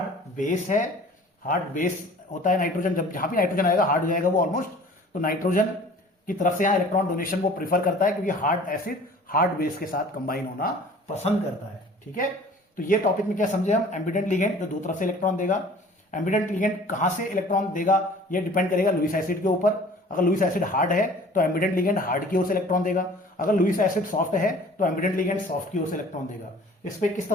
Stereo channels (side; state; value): both; normal; correlation 0.48